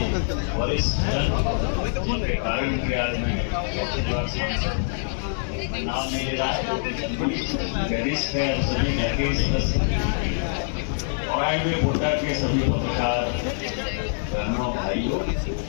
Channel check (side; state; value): right; silent; digital silence